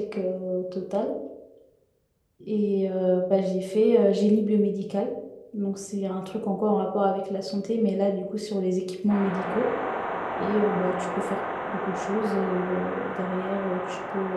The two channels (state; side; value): identical; both; correlation 1.00